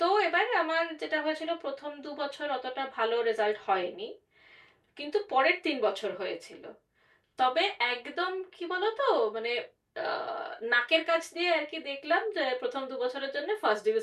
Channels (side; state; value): both; identical; correlation 1.00